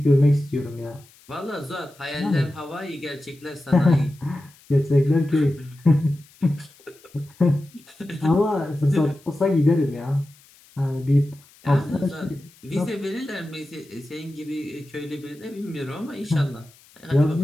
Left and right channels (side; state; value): left; noise; hiss, 27 dB below the sound